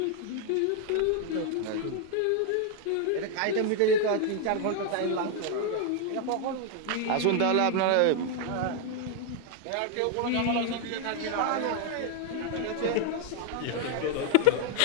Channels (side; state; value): both; different; correlation 0.00